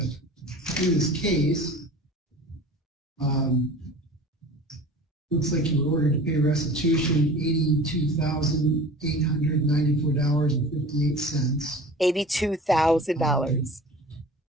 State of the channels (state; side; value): normal; both; correlation 0.40